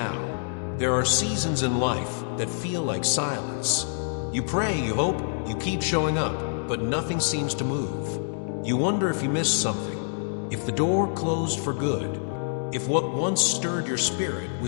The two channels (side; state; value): right; silent; digital silence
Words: There are seasons in life that feel like silence. You pray, you hope, you keep showing up, but nothing seems to move. You wonder if you missed something, if the door closed for good, if what once stirred your spirit